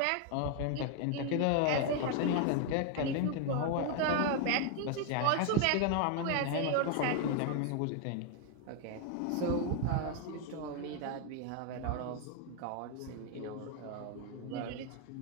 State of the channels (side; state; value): both; different; correlation 0.01